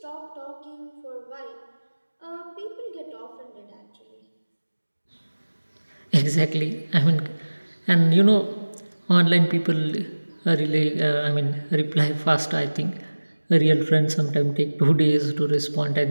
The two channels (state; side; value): inverted; both; correlation -1.00